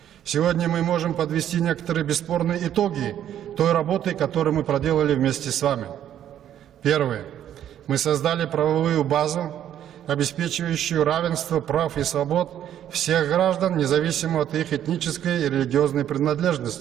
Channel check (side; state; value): left; quieter; 10.7 dB